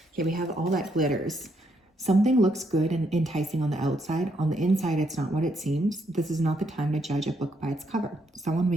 Okay, we have all that glitters. Something looks good and enticing on the outside. On the inside, it's not what it seems. This is not the time to judge a book by its cover. Someone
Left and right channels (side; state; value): both; normal; correlation 0.75